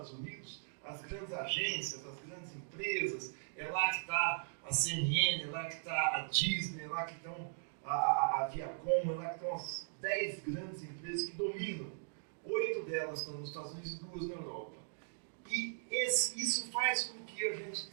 Unidos, as grandes agências, as grandes empresas, é lá que está a CNN, é lá que está a Disney, é lá que estão a Viacom, é lá que estão as 10 grandes empresas que dominam. 8 delas estão nos Estados Unidos e 2 na Europa. E isso faz com que a gente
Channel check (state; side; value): silent; left; digital silence